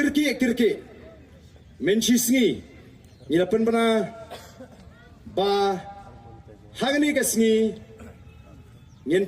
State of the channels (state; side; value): identical; both; correlation 1.00